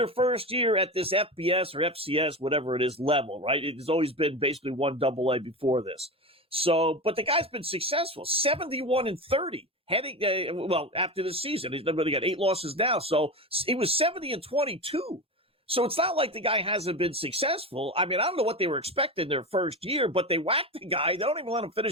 first year at this FBS or FCS, whatever it is, level, right? It has always been basically 1 AA before this. So, but the guy's been successful, 71-30, after the season. He's only got 8 losses now. So he was 70-22. So it's not like the guy hasn't been successful. I mean, I don't know what they were expecting their first year, but they whacked the guy. They don't even let him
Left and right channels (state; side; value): normal; both; correlation 0.23